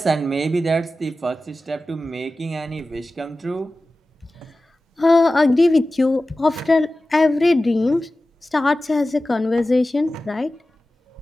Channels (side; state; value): both; normal; correlation 0.95